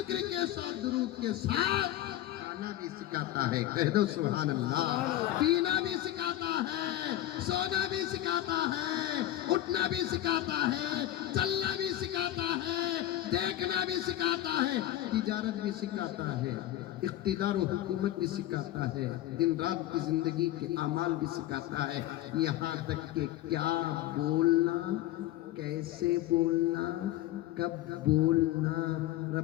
کے ساتھ، درود کے ساتھ. کھانا بھی سکھاتا ہے، کہہ دو سبحان اللہ. پینا بھی سکھاتا ہے، سونا بھی سکھاتا ہے، اٹھنا بھی سکھاتا ہے، چلنا بھی سکھاتا ہے، دیکھنا بھی سکھاتا ہے، تجارت بھی سکھاتا ہے، اقتدار و حکومت بھی سکھاتا ہے، دن رات کی زندگی کے اعمال بھی سکھاتا ہے. یہاں تک کہ کیا بولنا، کیسے بولنا، کب بولنا.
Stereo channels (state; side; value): quieter; right; 13.9 dB